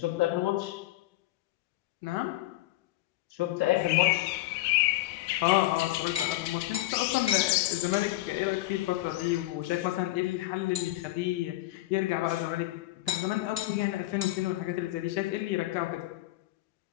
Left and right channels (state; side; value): quieter; right; 17.1 dB